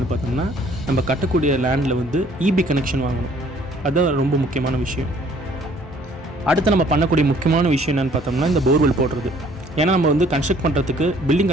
பார்த்தோம்னா நம்ம கட்டக்கூடிய லேண்டில் வந்து இபி கனெக்ஷன் வாங்கணும். அதுதான் ரொம்ப முக்கியமான விஷயம். அடுத்து நம்ம பண்ணக்கூடிய முக்கியமான விஷயம் என்னென்னு பார்த்தோம்னா இந்த போர்வெல் போடுறது. ஏன்னா நம்ம வந்து கன்ஸ்ட்ரக்ட் பண்ணுறதுக்கு பில்டிங்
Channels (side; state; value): both; normal; correlation 0.58